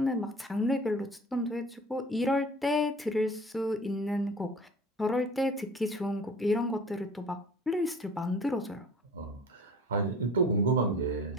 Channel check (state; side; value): normal; both; correlation 0.44